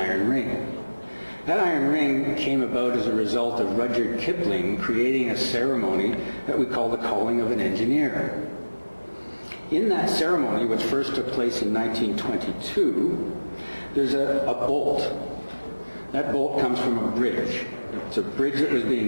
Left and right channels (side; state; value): both; inverted; correlation -1.00